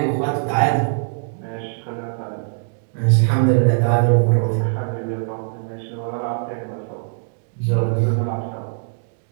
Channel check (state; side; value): silent; left; digital silence